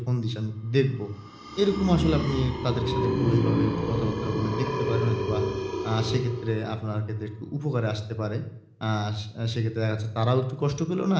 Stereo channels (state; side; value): identical; both; correlation 1.00